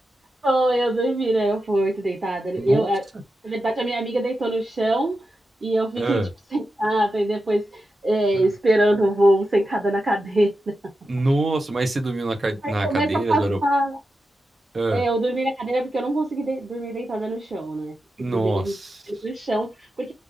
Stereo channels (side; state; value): both; normal; correlation 0.90